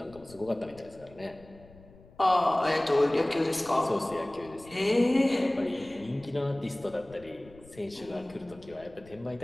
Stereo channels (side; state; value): left; noise; rumble, 22 dB below the sound